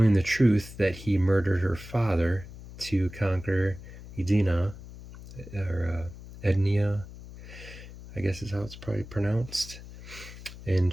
the truth that he murdered her father to conquer Edina, or Ednia, I guess is how it's probably pronounced. And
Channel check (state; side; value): noise; left; hum, 15 dB below the sound